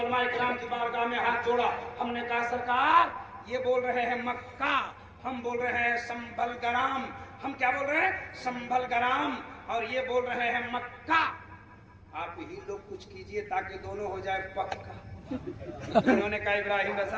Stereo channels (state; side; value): identical; both; correlation 1.00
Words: इकराम की बारगाह में हाथ जोड़ा। हमने कहा सरकार ये बोल रहे हैं मक्का, हम बोल रहे हैं संभल ग्राम। हम क्या बोल रहे हैं? संभल ग्राम। और ये बोल रहे हैं मक्का। आप ही लोग कुछ कीजिए ताकि दोनों हो जाए पक्का। उन्होंने कहा इब्राहिम